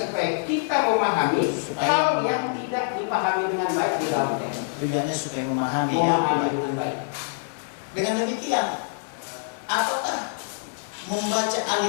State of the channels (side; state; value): right; silent; digital silence